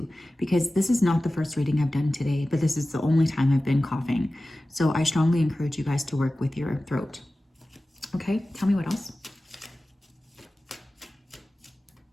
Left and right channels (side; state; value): both; normal; correlation 0.96